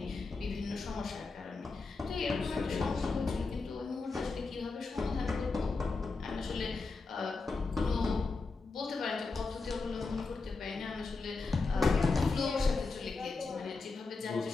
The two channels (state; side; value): quieter; right; 4.0 dB